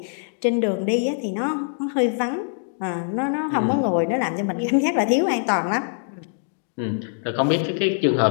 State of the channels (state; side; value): silent; right; digital silence